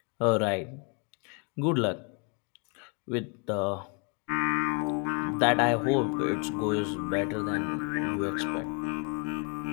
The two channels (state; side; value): quieter; right; 35.7 dB